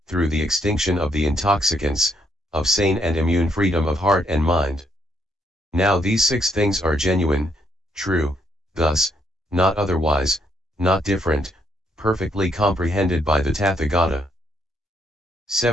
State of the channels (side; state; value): both; normal; correlation 0.73